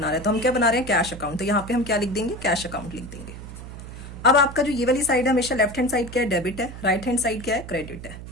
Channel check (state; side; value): noise; right; hum, 12 dB below the sound